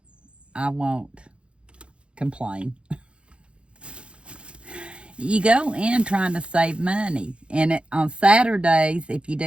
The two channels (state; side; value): late; left; 0.058 ms